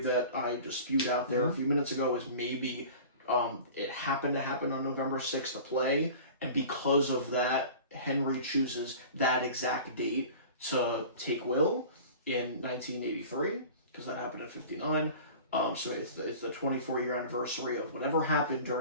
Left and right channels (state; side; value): inverted; both; correlation -0.40